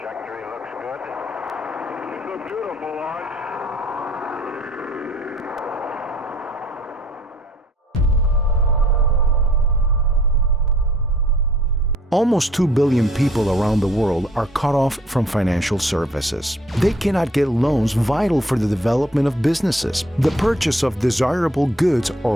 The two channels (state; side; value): normal; both; correlation 0.58